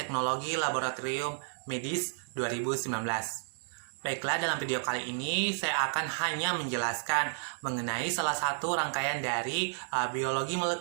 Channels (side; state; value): left; silent; digital silence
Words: Laboratorium Medis 2019. Baiklah, dalam video kali ini saya akan hanya menjelaskan mengenai salah satu rangkaian dari biologi